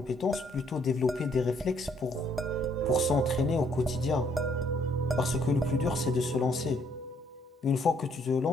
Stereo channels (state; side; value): normal; both; correlation 0.67